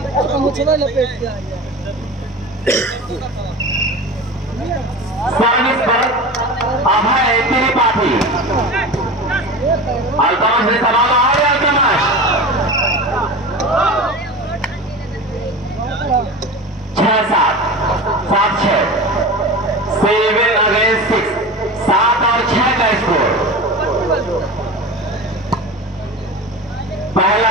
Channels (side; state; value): both; normal; correlation 0.31